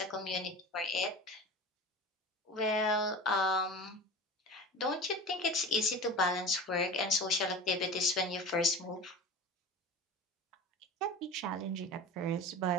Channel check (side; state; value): both; normal; correlation 0.33